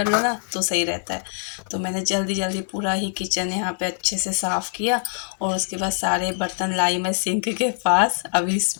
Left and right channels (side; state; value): right; silent; digital silence